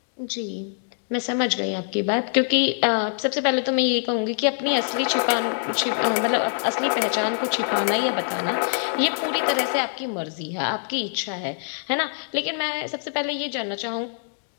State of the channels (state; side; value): silent; right; digital silence